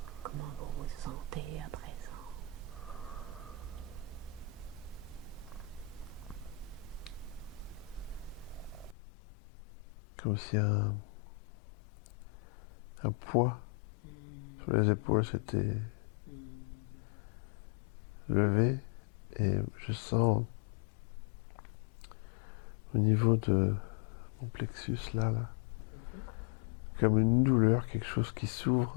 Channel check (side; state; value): right; drops out; at 9.0 s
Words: Comment vous vous sentez à présent? Comme si un poids sur les épaules s'était levé et je sens au niveau de mon plexus là, comme une douleur, quelque chose qui